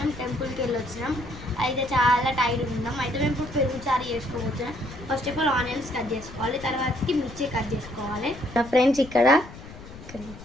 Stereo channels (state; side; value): noise; left; rumble, 15 dB below the sound